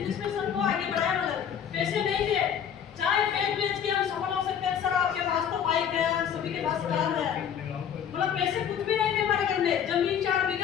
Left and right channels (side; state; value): right; quieter; 8.5 dB